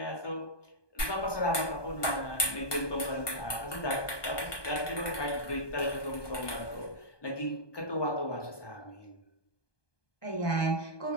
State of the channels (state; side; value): late; right; 1.2 ms